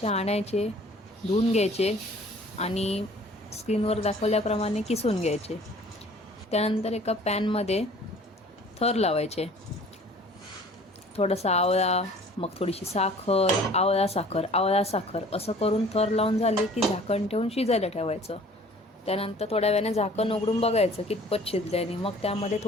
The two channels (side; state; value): both; normal; correlation 0.51